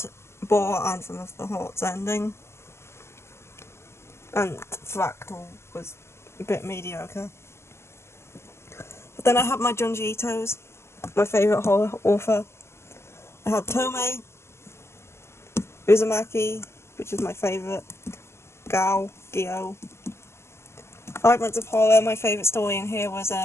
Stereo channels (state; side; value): late; right; 0.13 ms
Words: bar Anthem of the Heart's ending. And Fractal was a bit mediocre. But then I have my Junji Ito's, my favourite horror author. I have Tomei, Uzumaki, which is my favourite, Gyo. Fragments of Horror, my favourite story in here was